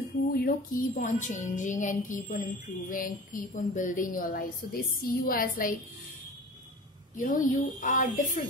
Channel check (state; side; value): normal; both; correlation 0.37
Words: who, you know, keep on changing and keep on improving, keep on building your life. So they see you as like, you know, you are